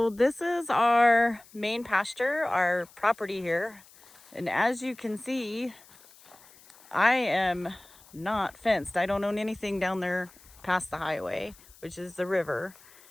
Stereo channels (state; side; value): noise; left; hiss, 25 dB below the sound